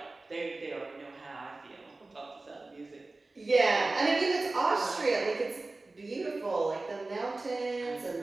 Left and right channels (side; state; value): left; quieter; 3.2 dB